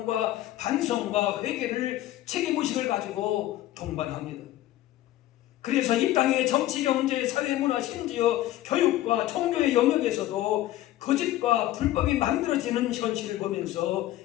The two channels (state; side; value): quieter; right; 14.6 dB